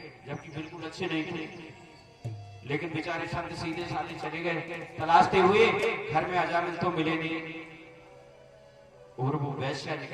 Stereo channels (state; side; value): identical; both; correlation 1.00